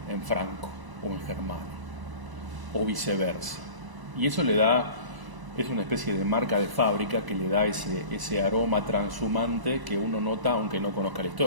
en franco o en germano, o viceversa. Y eso le da, es una especie de marca de fábrica que le da ese aroma transhumante que uno nota aunque no conozca la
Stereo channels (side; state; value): left; late; 1.0 ms